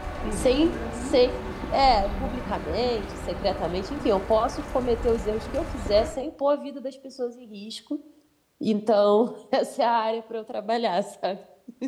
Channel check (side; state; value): both; identical; correlation 1.00